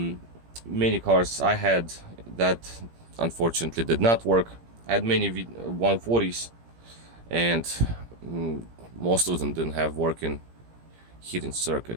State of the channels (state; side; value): late; left; 17 ms